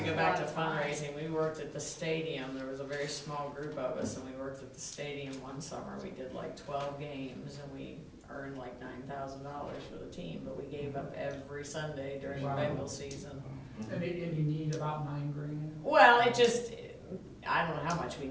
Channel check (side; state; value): both; identical; correlation 1.00